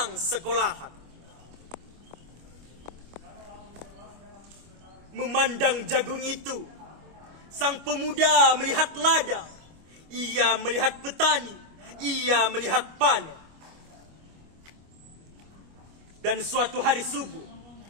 sekolahan memandang jagung itu. Sang pemuda melihat ladang, ia melihat petani, ia melihat panen. Dan suatu hari subuh,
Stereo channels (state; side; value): late; left; 25 ms